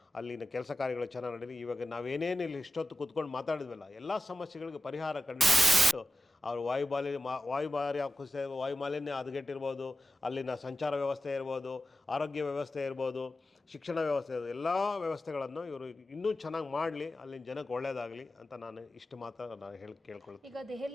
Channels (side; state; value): both; normal; correlation 0.92